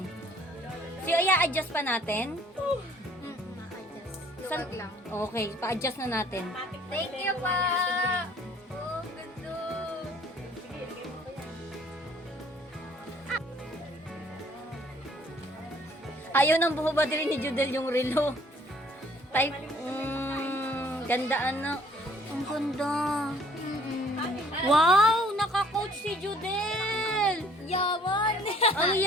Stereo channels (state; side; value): normal; both; correlation 0.58